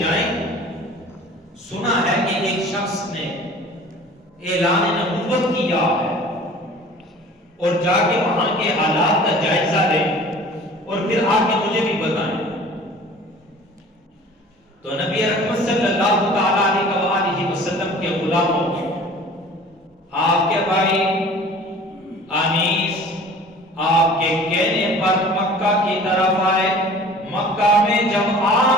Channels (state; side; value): normal; both; correlation 0.45